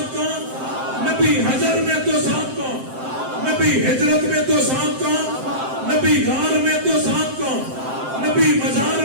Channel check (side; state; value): left; late; 7.7 ms